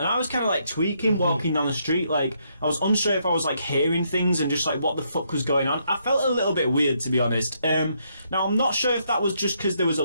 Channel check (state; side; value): inverted; both; correlation -0.75